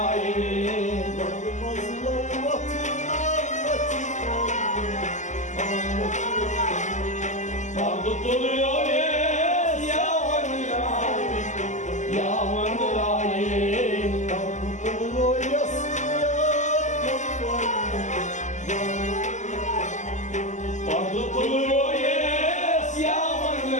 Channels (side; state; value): right; late; 0.34 ms